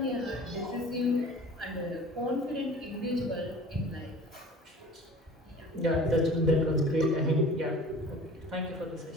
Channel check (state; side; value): normal; both; correlation 0.43